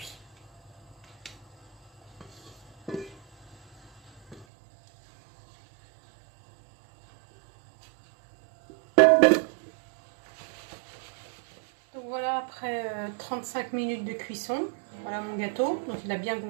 Donc voilà, après 35 minutes de cuisson, Voilà mon gâteau, donc il a bien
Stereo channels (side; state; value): left; drops out; at 4.5 s